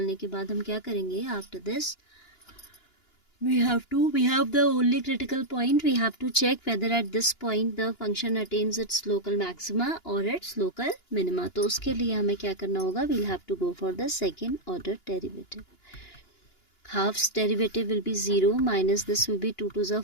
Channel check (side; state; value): right; late; 2.9 ms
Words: के बाद हम क्या करेंगे, after this we have the only critical point. We have to check whether at this point the function attains its local maxima or its local minima. तो उसके लिए हमें क्या करना होगा, we'll have to go for the second order derivative. Half's derivative will be 0 minus this will be 2 to the